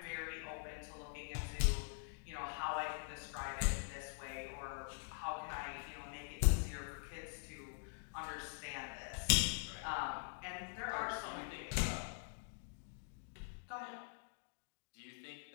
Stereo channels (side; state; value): right; silent; digital silence